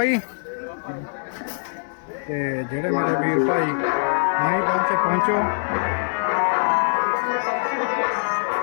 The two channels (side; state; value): right; silent; digital silence